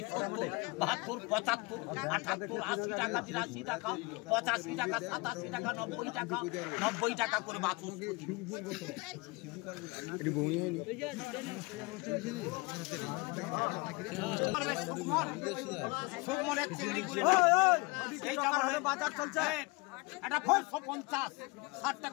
70, 72, 75, 78, 80 টাকা, 83 টাকা, 85 টাকা, 87 টাকা, 90 টাকা, 90 টাকা করে বাছুর। সুকমলের চিংড়ি গুলি বাজার চলছে। এটা 550, 60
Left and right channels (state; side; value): quieter; right; 26.5 dB